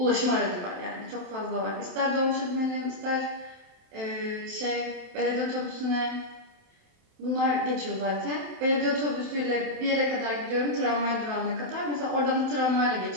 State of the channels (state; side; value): late; left; 27 ms